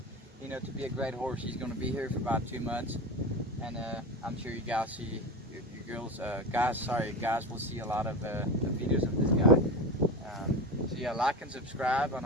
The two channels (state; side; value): normal; both; correlation 0.24